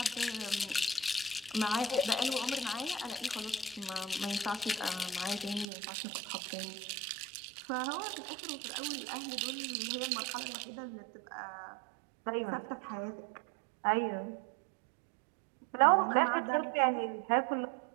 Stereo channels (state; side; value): drops out; left; at 5.7 s